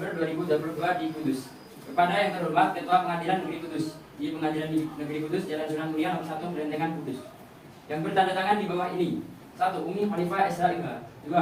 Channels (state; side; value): identical; both; correlation 1.00